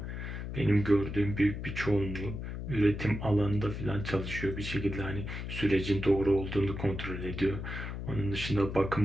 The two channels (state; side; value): noise; left; hum, 6 dB below the sound